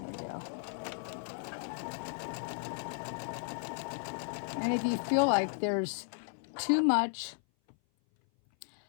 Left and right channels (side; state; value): right; silent; 55 dB below the other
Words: go. And if you feel like there's too much